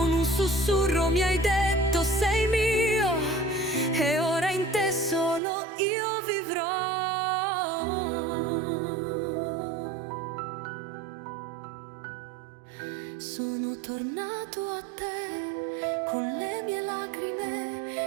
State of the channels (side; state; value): left; drops out; at 5.4 s